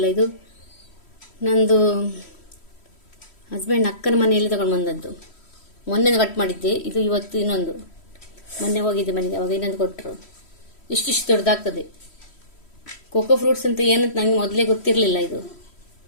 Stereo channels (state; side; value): late; right; 3.1 ms